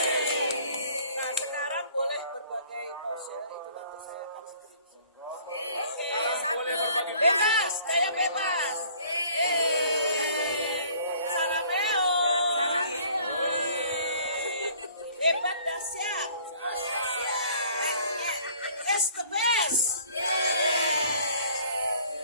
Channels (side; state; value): both; inverted; correlation -0.54